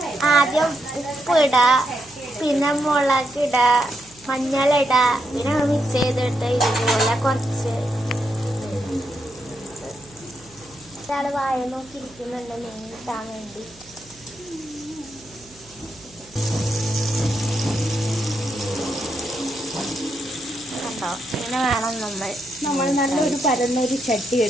ആദ്യം ഉപ്പിടുക, പിന്നെ മുളകിടുക, മഞ്ഞളിടുക, പിന്നെ മിക്സ് ചെയ്തിട്ട് ഇതുപോലെ കുറച്ച് ഒരാൾ വായ നോക്കിയിരിക്കുന്നുണ്ട് മീൻ കിട്ടാൻ വേണ്ടി. ഇങ്ങനെ വേണം നമ്മൾ നല്ലൊരു പരന്നൊരു ചട്ടി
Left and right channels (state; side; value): noise; right; hum, 25 dB below the sound